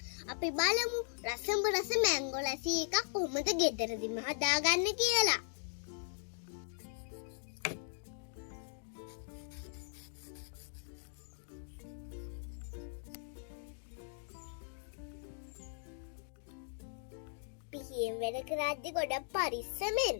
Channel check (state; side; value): silent; right; digital silence